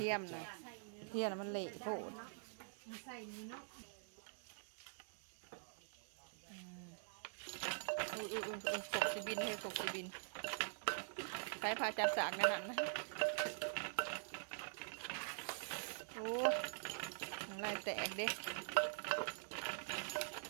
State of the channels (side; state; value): left; silent; digital silence